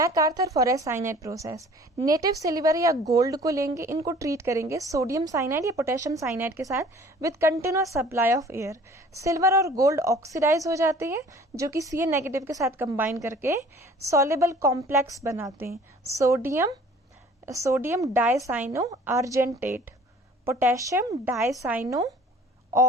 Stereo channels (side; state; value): both; normal; correlation 0.50